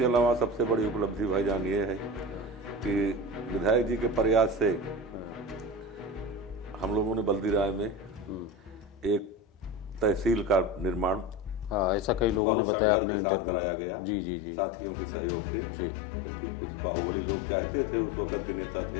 अलावा सबसे बड़ी उपलब्धि भाईजान ये है कि विधायक जी के प्रयास से हम लोगों ने बल्दी राय में एक तहसील का निर्माण ऐसा कई लोग बहुत संघर्ष के साथ कराया गया, जी जी जी, साथियों के सहयोग से, जबकि कुछ बाहुबली लोग चाहते थे, उस वक्त के नेता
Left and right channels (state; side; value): drops out; right; at 12.4 s